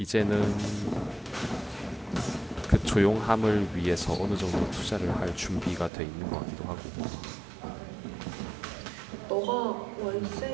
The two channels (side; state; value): left; drops out; at 5.9 s